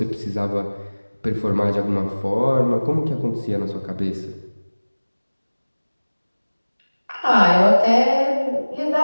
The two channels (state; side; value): inverted; both; correlation -1.00